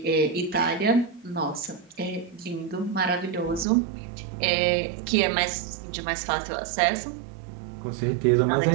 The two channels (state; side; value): drops out; left; at 3.7 s